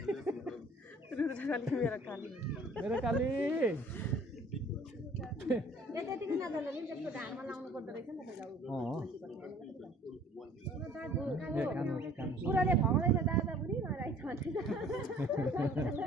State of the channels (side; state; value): both; normal; correlation 0.53